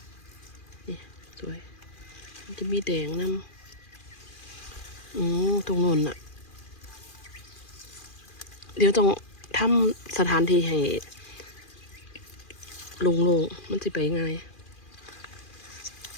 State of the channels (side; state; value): right; late; 2.4 ms